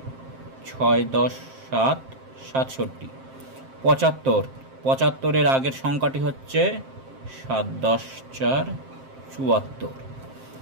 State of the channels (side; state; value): left; late; 7.6 ms